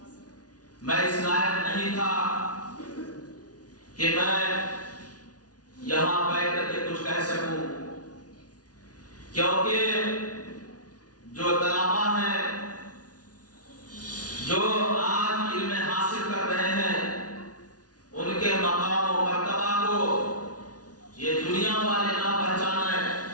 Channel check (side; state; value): right; late; 0.68 ms